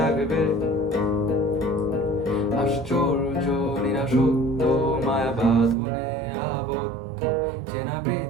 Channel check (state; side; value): drops out; left; at 5.8 s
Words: আশ্চর্য নিরাসত্য মায়া বাঁধনে আবদ্ধ চেনা